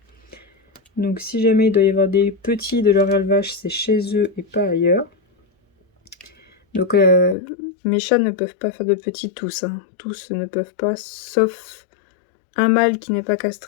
Donc si jamais il doit y avoir des petits de leur élevage, c'est chez eux et pas ailleurs. Donc mes chats ne peuvent pas faire de petits tous. Hein. Tous ne peuvent pas, sauf un mâle qui n'est pas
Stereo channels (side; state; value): right; drops out; at 7.4 s